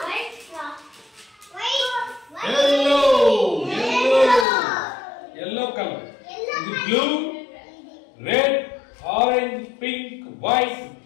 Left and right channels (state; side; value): drops out; right; at 4.5 s